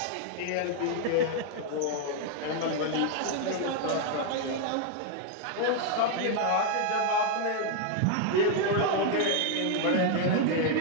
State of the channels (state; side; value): different; both; correlation 0.00